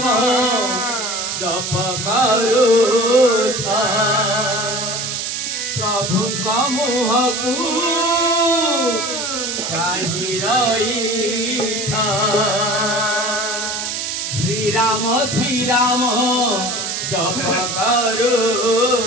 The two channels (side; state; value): right; noise; hiss, 3 dB below the sound